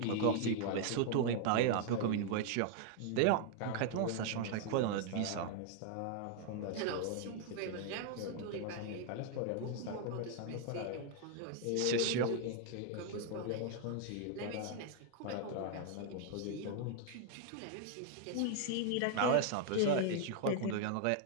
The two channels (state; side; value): different; both; correlation 0.00